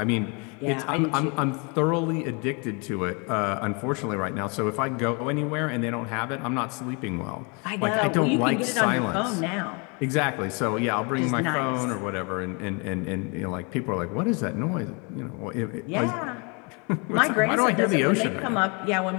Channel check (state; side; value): quieter; right; 32.5 dB